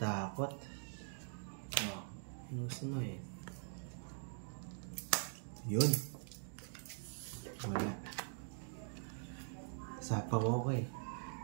Oh, inusin mo eh. Yun. Wala. Sapaw ako eh.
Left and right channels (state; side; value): silent; left; digital silence